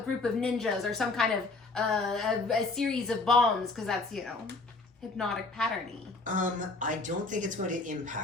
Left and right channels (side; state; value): right; quieter; 3.5 dB